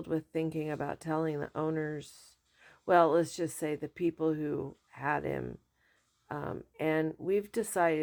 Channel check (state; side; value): identical; both; correlation 1.00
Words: with thinking about telling the owners, well, let's just say the people who had him. And we've